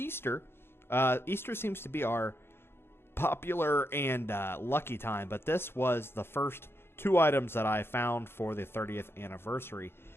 Easter seems to be our popular and lucky time. But this was the first 2 items that I found for the 30th anniversary,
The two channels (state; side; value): late; right; 0.11 ms